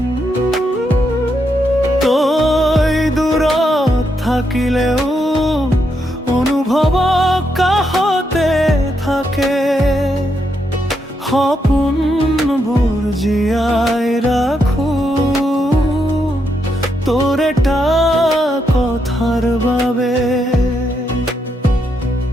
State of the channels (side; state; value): both; normal; correlation 0.80